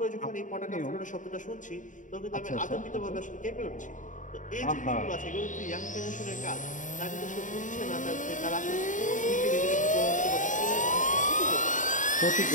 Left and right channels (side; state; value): right; late; 0.37 ms